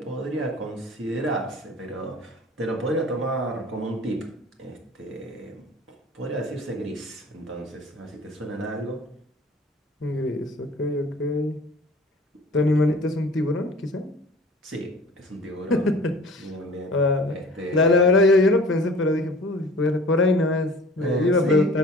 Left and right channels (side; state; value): both; normal; correlation 0.46